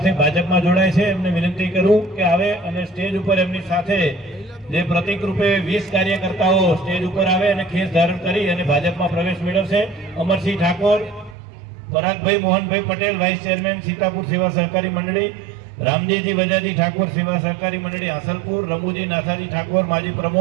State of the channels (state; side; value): drops out; left; at 11.4 s